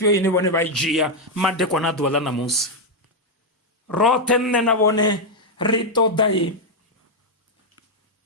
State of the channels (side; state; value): both; normal; correlation 0.02